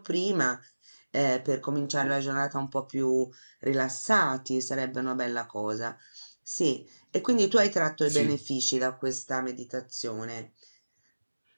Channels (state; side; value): inverted; both; correlation -1.00